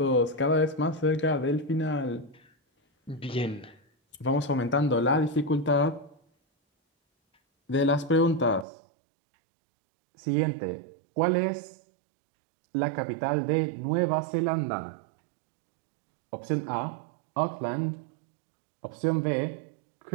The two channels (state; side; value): drops out; left; at 8.7 s